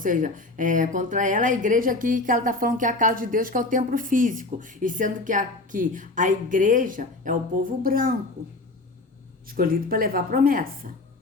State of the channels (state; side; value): quieter; right; 3.1 dB